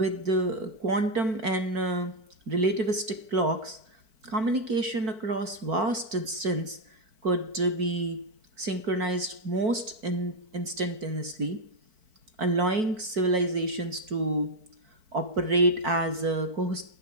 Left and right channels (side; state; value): left; late; 4.5 ms